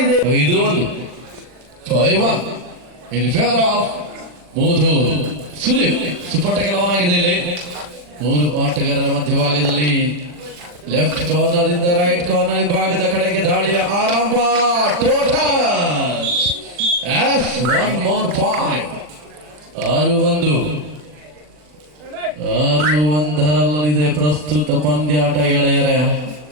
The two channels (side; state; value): left; late; 40 ms